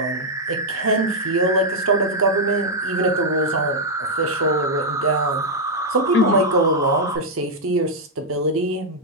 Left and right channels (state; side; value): normal; both; correlation -0.03